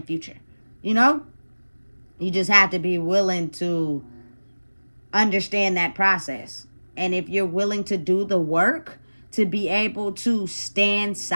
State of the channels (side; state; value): both; inverted; correlation -1.00